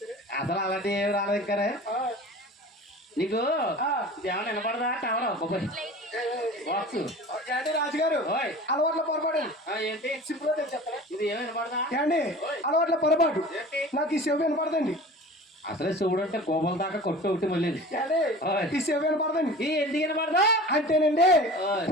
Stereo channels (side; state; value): both; normal; correlation 0.39